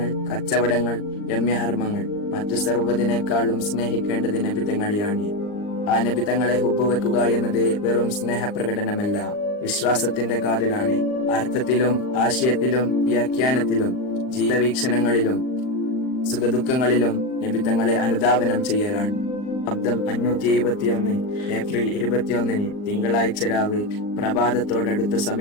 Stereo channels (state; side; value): late; right; 39 ms